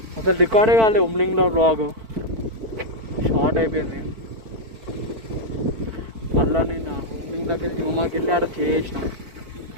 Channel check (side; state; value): left; late; 4.5 ms